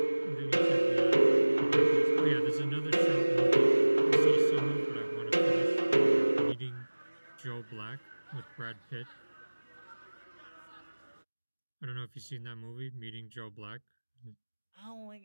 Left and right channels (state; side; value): inverted; both; correlation -1.00